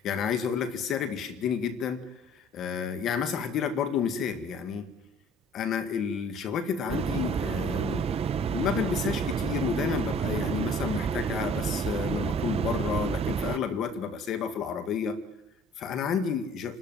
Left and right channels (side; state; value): both; normal; correlation 0.52